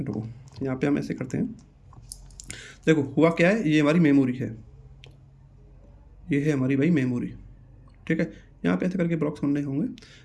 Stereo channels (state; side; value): identical; both; correlation 1.00